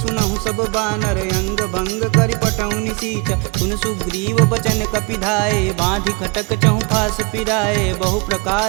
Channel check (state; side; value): quieter; left; 28.9 dB